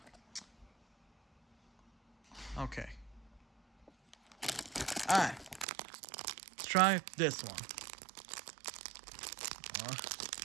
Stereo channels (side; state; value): left; drops out; at 5.7 s